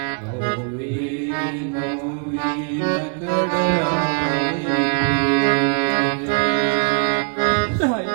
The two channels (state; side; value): quieter; left; 38.8 dB